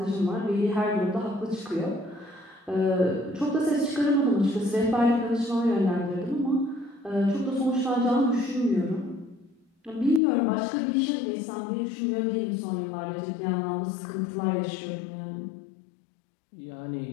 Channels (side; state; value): right; drops out; at 10.2 s